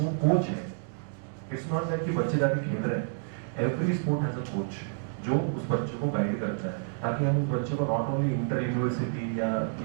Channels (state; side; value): quieter; left; 39.1 dB